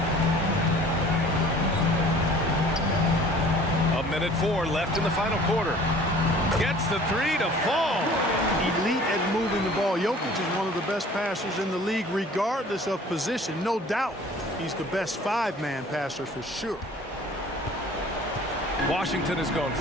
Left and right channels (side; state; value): both; normal; correlation 0.49